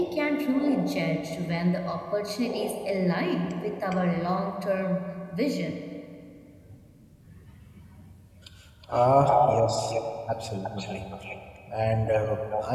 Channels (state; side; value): identical; both; correlation 1.00